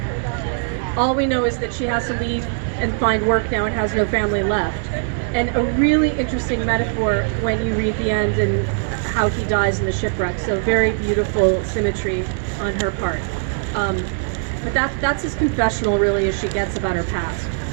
All we know is that she has to leave and find work now and has no family left. And a really interesting metaphor when you read the end and how he dies in the shipwreck. So very beautiful symmetry on her part. But that's as confessional, really, as she gets about her past.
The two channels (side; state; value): left; silent; 60 dB below the other